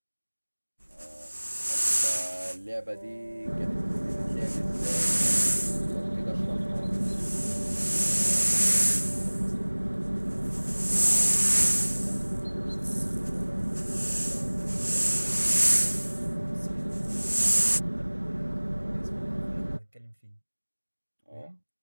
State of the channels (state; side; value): inverted; both; correlation -1.00